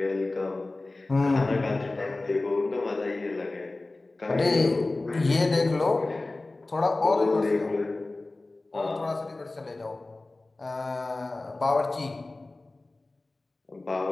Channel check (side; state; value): right; quieter; 3.1 dB